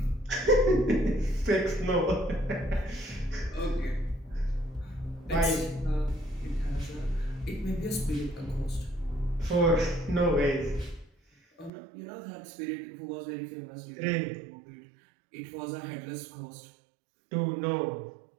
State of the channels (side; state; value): left; drops out; at 11.7 s